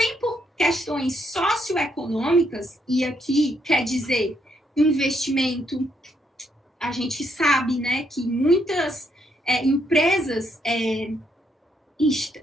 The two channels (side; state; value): both; normal; correlation 0.75